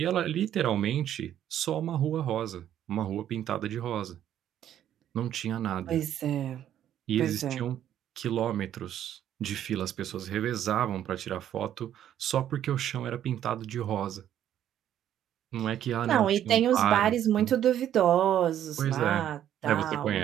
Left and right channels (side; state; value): left; quieter; 10.9 dB